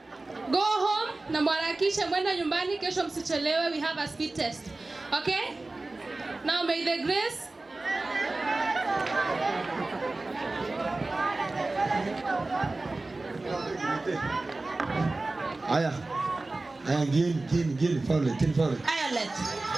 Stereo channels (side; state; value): left; quieter; 3.1 dB